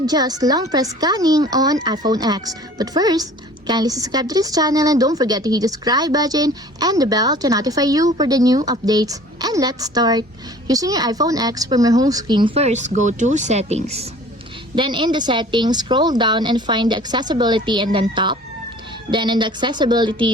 long press scanning on iPhone X. But first, kindly subscribe to this channel and don't forget to hit the subscribe button and the bell to notify you for the new updates. And let's start. Using your iPhone X, from your home screen, first go to Settings. Then in the settings, scroll down and find the accessibility and then top. Then in the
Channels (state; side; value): normal; both; correlation 0.48